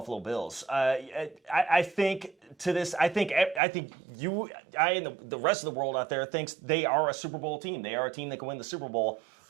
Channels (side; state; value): left; drops out; at 3.6 s